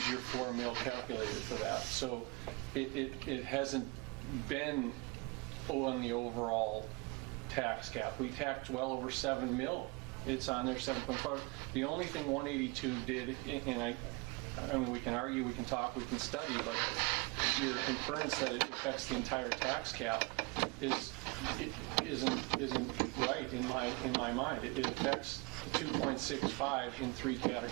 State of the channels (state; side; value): quieter; left; 28.0 dB